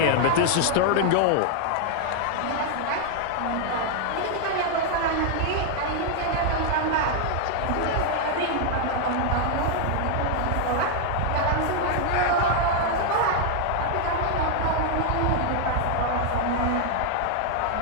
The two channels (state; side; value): different; both; correlation 0.00